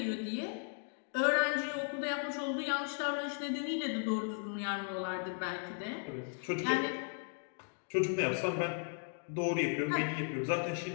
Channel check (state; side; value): silent; right; 54 dB below the other